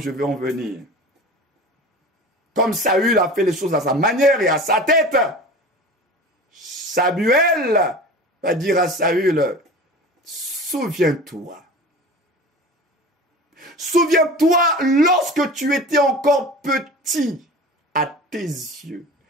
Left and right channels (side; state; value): both; normal; correlation 0.36